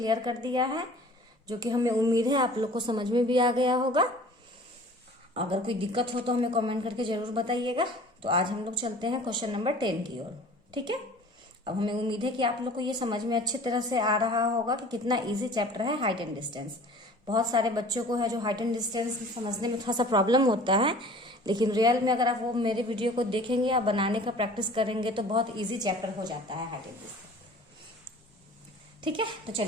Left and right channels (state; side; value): normal; both; correlation 0.46